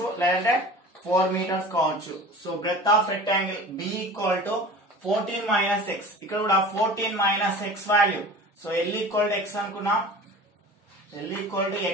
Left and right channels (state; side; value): normal; both; correlation 0.39